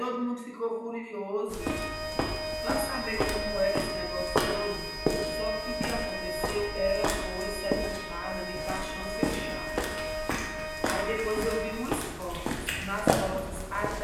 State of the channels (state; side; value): identical; both; correlation 1.00